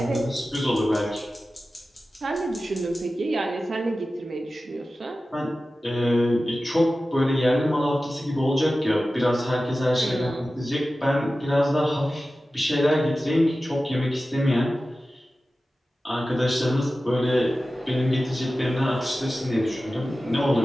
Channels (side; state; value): both; normal; correlation 0.95